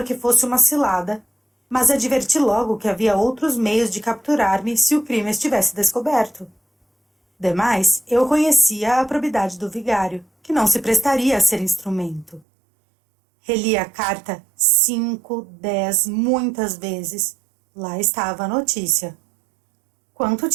que fosse uma cilada, mas adverti logo que havia outros meios de capturar-me se o crime estivesse descoberto. Demais, eu conhecia a probidade do vigário, que não se prestaria a ser instrumento. Reli a carta 5, 10, muitas vezes. Lá estava a notícia. Quanto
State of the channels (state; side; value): drops out; left; at 12.4 s